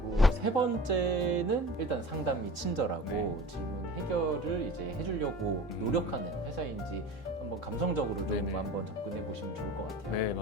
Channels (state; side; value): normal; both; correlation 0.38